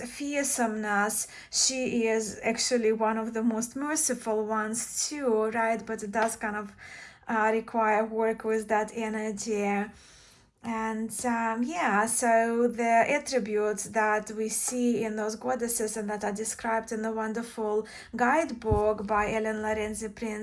she is actually one of the most merciful ones too, right? But it does kind of require work with that energy. And yeah, so the attributes that we see in those goddesses and that are described in the wonderful guidebook by Ellen Lorenzi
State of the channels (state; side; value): identical; both; correlation 1.00